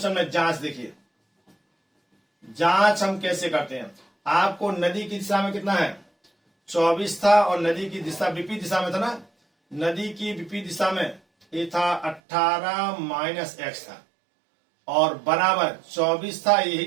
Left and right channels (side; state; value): left; drops out; at 12.2 s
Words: में, जांच देखिए। जांच हम कैसे करते हैं, आपको नदी की दिशा में कितना है 24 था और नदी की दिशा विपरीत दिशा में था ना, नदी की विपरीत दिशा में ये था 18 माइनस x था और बराबर 24 था,